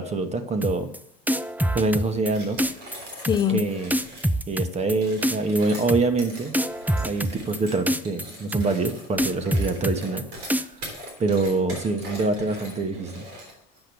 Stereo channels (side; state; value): both; normal; correlation 0.57